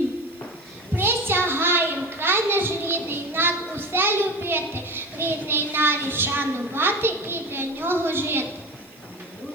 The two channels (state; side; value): noise; right; hiss, 27 dB below the sound